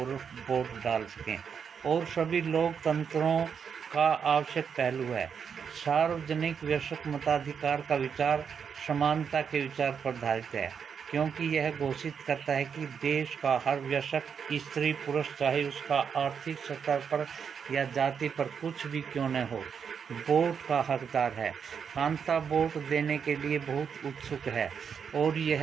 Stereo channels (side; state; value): left; quieter; 6.9 dB